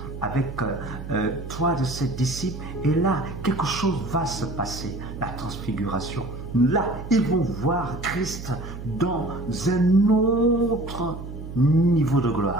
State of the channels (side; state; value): right; noise; hum, 10 dB below the sound